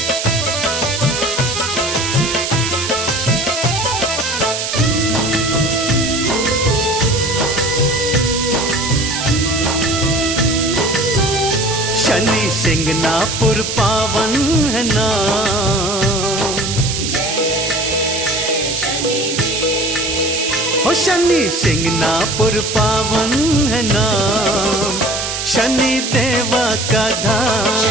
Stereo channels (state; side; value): noise; right; hiss, 3 dB below the sound